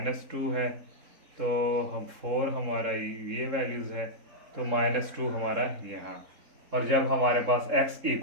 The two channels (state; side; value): late; left; 3.7 ms